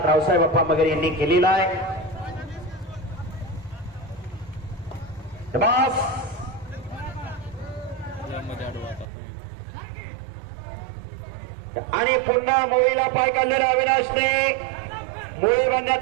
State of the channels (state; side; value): drops out; left; at 9.1 s